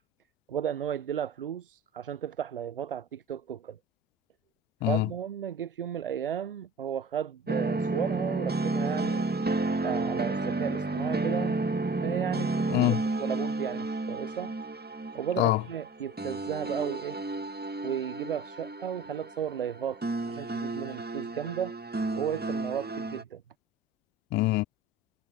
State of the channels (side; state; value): both; normal; correlation 0.42